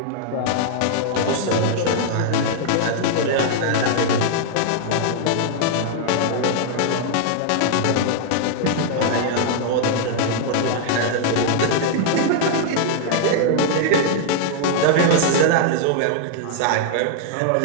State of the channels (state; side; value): different; both; correlation -0.01